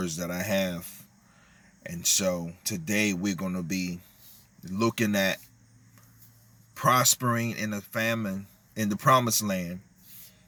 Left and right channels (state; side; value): identical; both; correlation 1.00